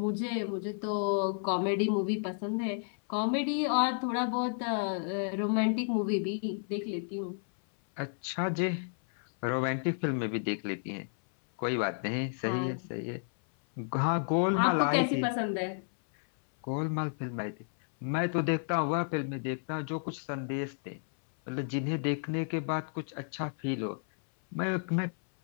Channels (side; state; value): right; silent; 57 dB below the other